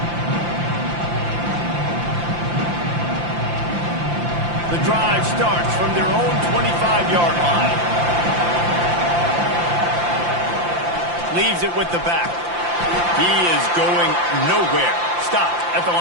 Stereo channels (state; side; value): late; left; 5.8 ms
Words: The drive starts from their own 25-yard line. Leaves it with the back. He is going nowhere. Stopped at the